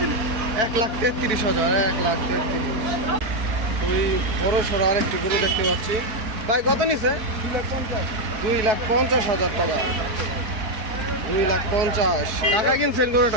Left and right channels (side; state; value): left; late; 4.6 ms